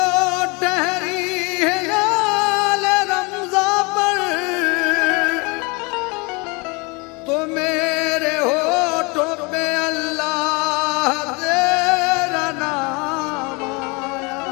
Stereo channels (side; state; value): right; quieter; 28.8 dB